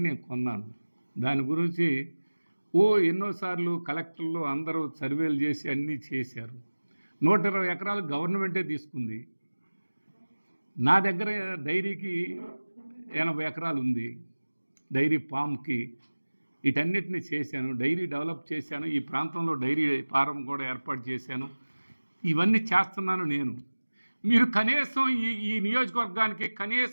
నేను కొన్నాను. దాని గురించి ఎన్నోసార్లు కలెక్టర్లు అందరూ సర్వేలు చేసి అన్నీ చేశారు. 120 ఎకరాలు గవర్నమెంటే తీసుకుంది. నా దగ్గర డైరీకి 80 ఎకరాలు ఉంది. డైరీ ఫామ్కి వీటన్నిటిని చేశాను. డైరీ డెవలప్ చేశాను. ఈ ప్రాంతంలో డైరీ ఫారం కూడా ఏర్పాటు చేశాను. ఇవన్నీ చేస్తున్నాను నేను. మీరు కనీసం ఈ నియోజకవర్గానికి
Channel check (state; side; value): inverted; both; correlation -1.00